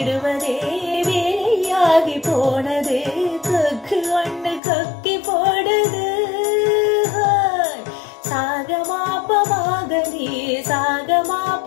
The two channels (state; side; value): drops out; right; at 4.6 s